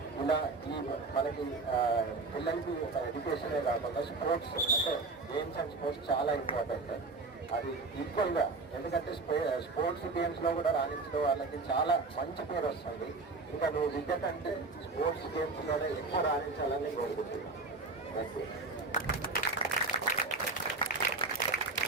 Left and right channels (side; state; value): left; quieter; 3.7 dB